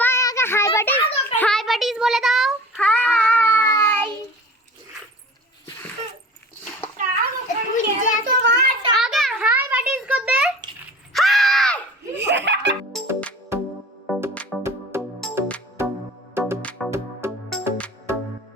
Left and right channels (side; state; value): both; normal; correlation 0.41